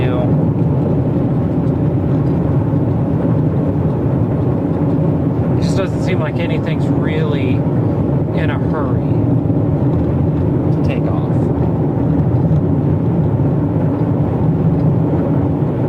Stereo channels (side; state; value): both; identical; correlation 1.00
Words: It just doesn't seem like anything's really in a hurry to take off.